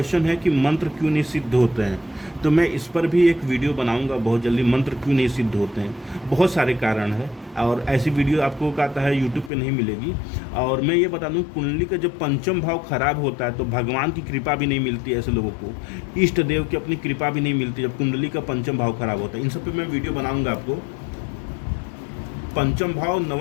है कि मंत्र क्यों नहीं सिद्ध होते हैं, तो मैं इस पर भी एक वीडियो बनाऊंगा बहुत जल्दी, मंत्र क्यों नहीं सिद्ध होते हैं। बहुत सारे कारण हैं, और ऐसी वीडियो आपको कहता है यूट्यूब पे नहीं मिलेगी। और मैं ये बता दूं, कुंडली का जब पंचम भाव खराब होता है तो भगवान की कृपा भी नहीं मिलती है ऐसे लोगों को, इष्ट देव की अपनी कृपा भी नहीं मिलती जब कुंडली का पंचम भाव खराब होता है। इन सब पे मैं वीडियो बनाऊंगा आपको। पंचम भाव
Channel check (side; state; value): right; drops out; at 9.5 s